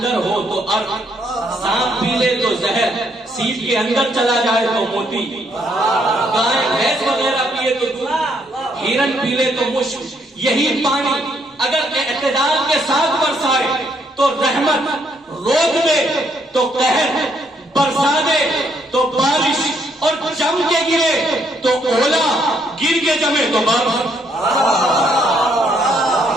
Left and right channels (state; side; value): normal; both; correlation 0.71